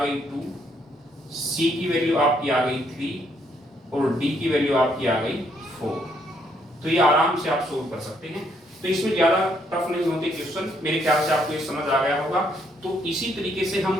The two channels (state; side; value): normal; both; correlation 0.71